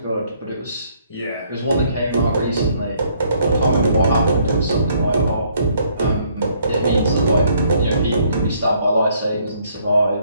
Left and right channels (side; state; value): both; inverted; correlation -0.66